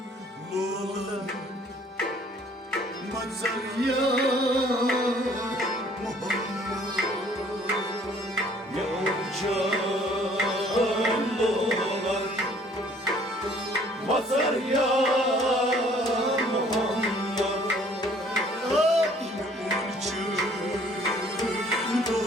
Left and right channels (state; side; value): normal; both; correlation 0.58